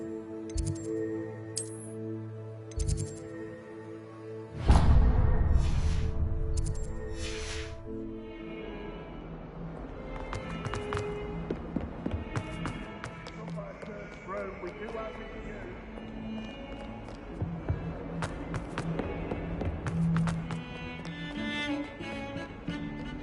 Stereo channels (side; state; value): both; identical; correlation 1.00